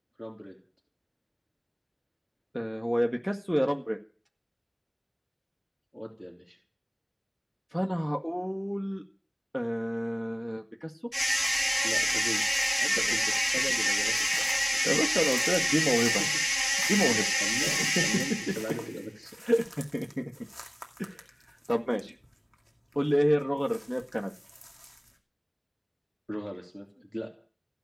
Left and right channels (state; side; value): identical; both; correlation 1.00